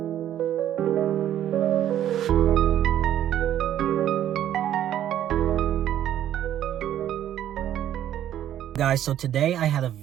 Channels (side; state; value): left; quieter; 11.3 dB